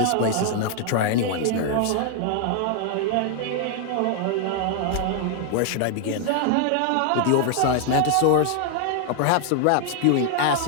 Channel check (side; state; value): both; different; correlation 0.00